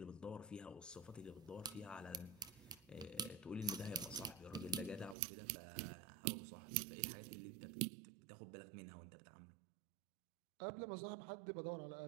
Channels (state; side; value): drops out; left; at 5.2 s